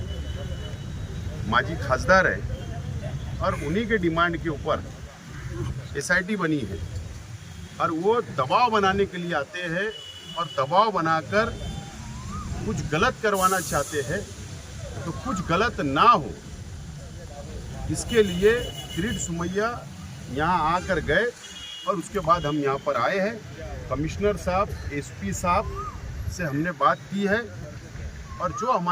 माजी खासदार है, और उन्हीं के डिमांड के ऊपर एसआईटी बनी है। और वो दबाव बनाने के लिए आते हैं और दबाव बनाकर कुछ गलत करवाना चाहते हैं, तो कुछ गलत ना हो इसके लिए किरीट सोमैया यहाँ आकर गए, और उसके बाद हम यहाँ पर आए हैं। कमिश्नर साहब, एसपी साहब से हमने बात की है, और जो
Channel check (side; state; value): both; identical; correlation 1.00